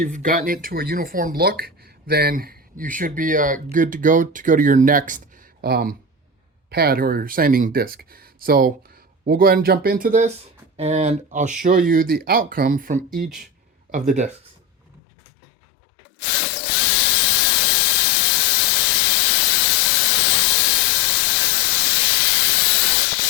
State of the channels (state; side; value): drops out; right; at 15.0 s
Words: gotten it to a uniform look, then you should be good to go to your next pad or sanding disc. So we'll go ahead and jump into this and I'll show you the outcome from each of the discs.